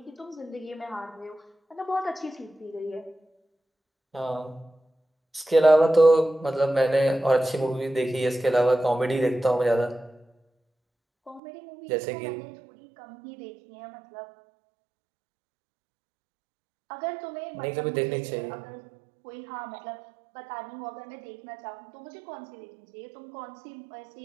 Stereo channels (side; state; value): left; drops out; at 11.4 s